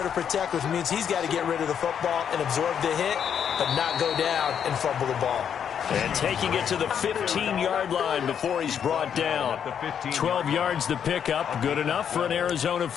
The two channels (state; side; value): quieter; right; 8.2 dB